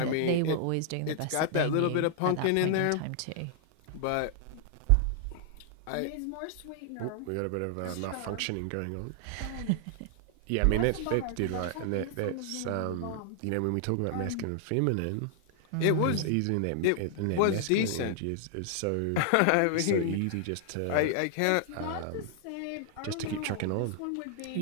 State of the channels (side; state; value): both; different; correlation -0.01